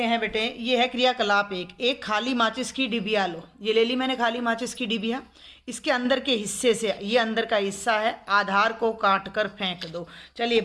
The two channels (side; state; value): both; identical; correlation 1.00